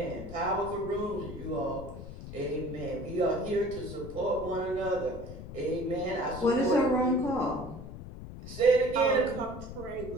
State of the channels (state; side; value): noise; left; rumble, 11 dB below the sound